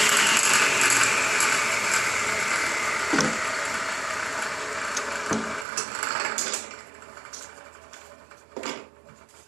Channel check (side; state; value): left; drops out; at 5.7 s